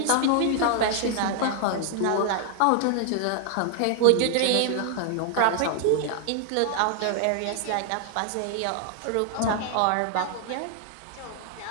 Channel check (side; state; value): both; different; correlation 0.00